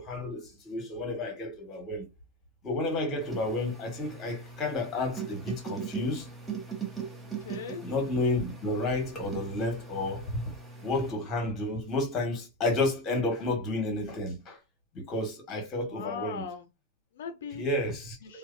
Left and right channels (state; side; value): normal; both; correlation 0.20